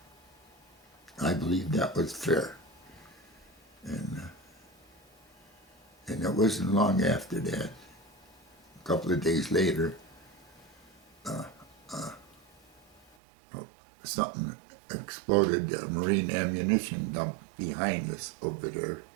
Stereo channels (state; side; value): drops out; left; at 13.0 s